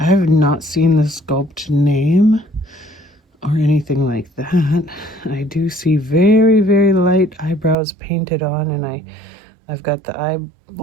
have not seen the sculpt name or anything like that. I do see very, very light eyebrows painted on, and I've got the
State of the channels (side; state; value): left; drops out; at 7.8 s